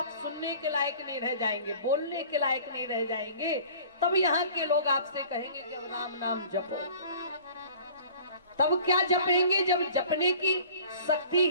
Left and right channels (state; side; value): inverted; both; correlation -0.47